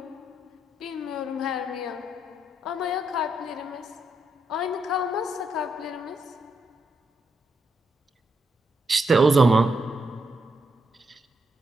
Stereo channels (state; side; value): normal; both; correlation 0.81